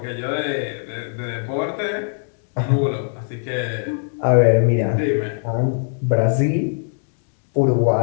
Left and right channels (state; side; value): silent; right; digital silence